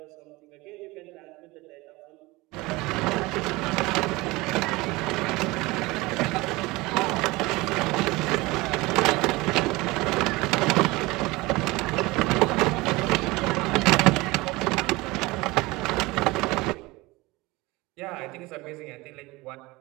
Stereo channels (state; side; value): quieter; left; 21.9 dB